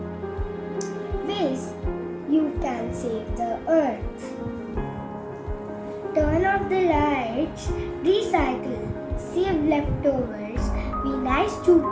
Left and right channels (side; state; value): both; identical; correlation 1.00